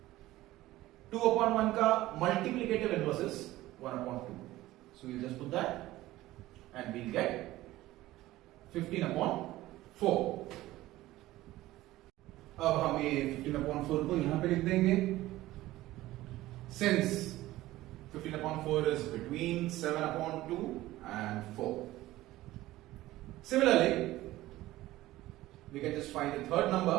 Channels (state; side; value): quieter; left; 16.6 dB